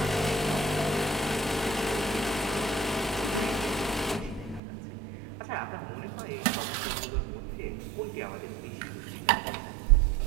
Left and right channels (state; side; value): drops out; left; at 4.6 s